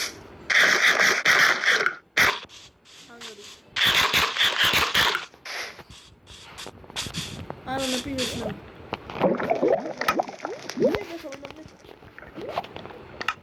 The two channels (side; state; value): both; identical; correlation 1.00